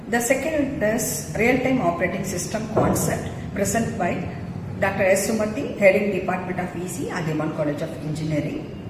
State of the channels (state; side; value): identical; both; correlation 1.00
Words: The second is real-time operating system concept present by Dr. S. Sumathi, heading Department of EC at Dewan College of Engineering.